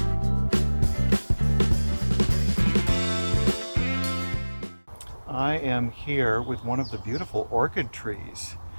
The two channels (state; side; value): inverted; both; correlation -1.00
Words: I am here with one of the beautiful orchid trees.